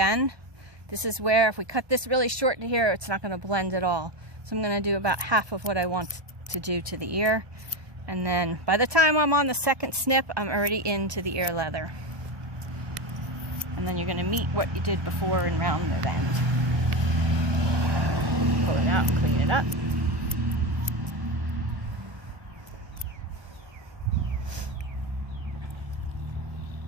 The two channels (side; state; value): left; late; 1.2 ms